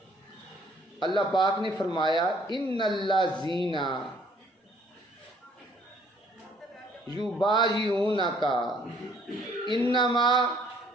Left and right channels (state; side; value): normal; both; correlation 0.61